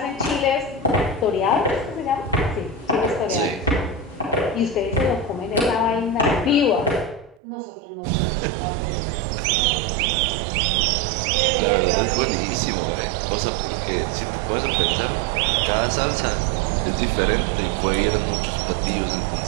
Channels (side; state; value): left; drops out; at 7.4 s